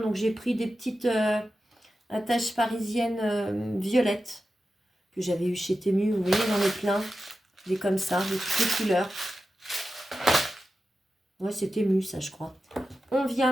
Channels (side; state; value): both; normal; correlation 0.92